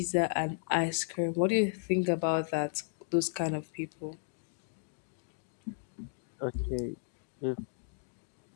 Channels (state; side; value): silent; right; digital silence